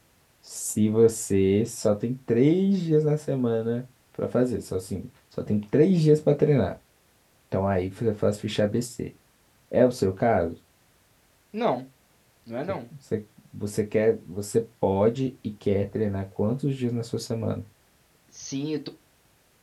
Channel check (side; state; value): both; identical; correlation 1.00